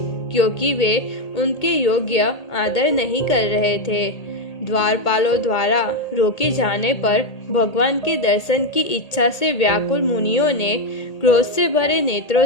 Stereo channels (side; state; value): right; late; 1.8 ms